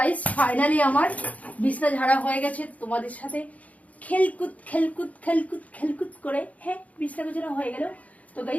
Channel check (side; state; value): right; late; 0.070 ms